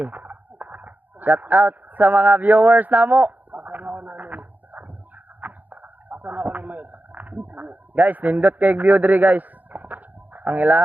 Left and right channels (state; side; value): late; left; 0.082 ms